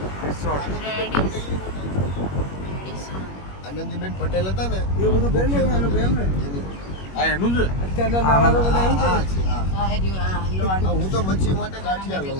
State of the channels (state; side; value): late; right; 21 ms